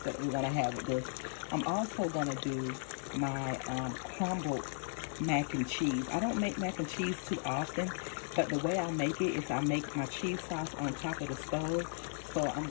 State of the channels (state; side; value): silent; right; digital silence